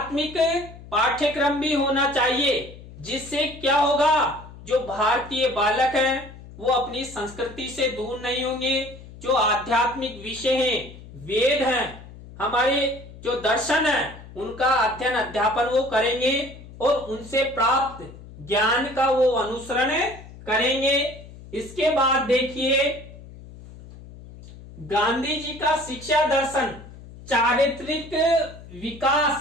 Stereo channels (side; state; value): left; noise; hum, 17 dB below the sound